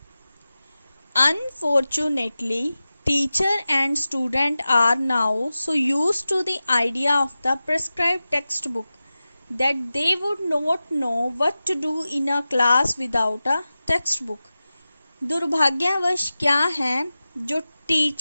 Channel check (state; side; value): inverted; both; correlation -0.95